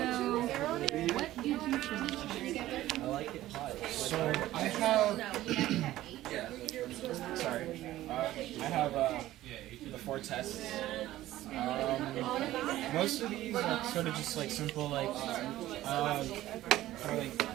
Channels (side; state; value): left; quieter; 15.0 dB